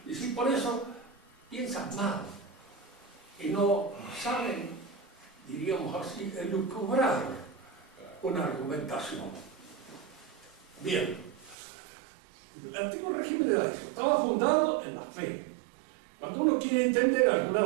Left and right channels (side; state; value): left; drops out; at 11.6 s